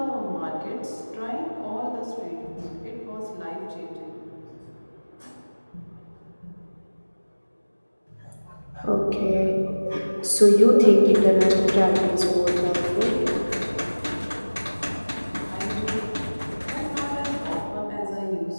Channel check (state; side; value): inverted; both; correlation -1.00